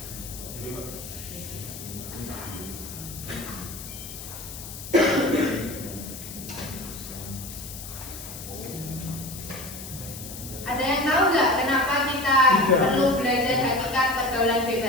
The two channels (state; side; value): noise; left; hiss, 11 dB below the sound